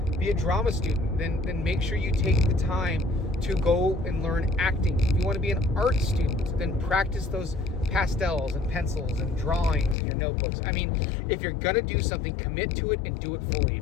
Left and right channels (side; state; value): right; drops out; at 10.0 s